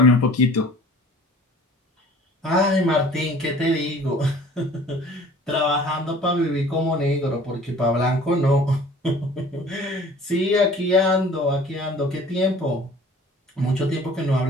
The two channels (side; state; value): both; normal; correlation 0.48